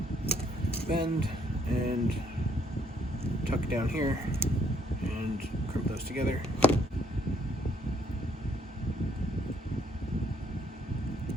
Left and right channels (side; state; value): both; normal; correlation 0.67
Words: bend, and tuck down here and crimp those together.